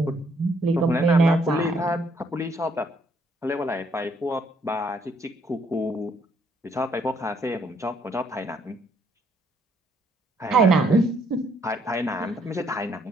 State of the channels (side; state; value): both; normal; correlation 0.69